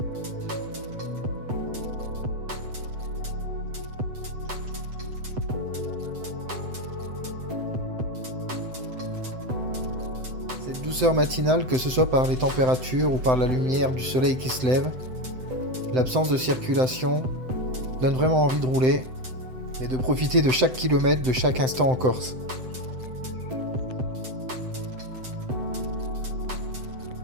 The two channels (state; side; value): late; left; 7.8 ms